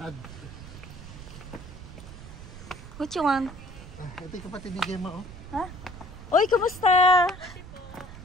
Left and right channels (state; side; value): noise; right; rumble, 14 dB below the sound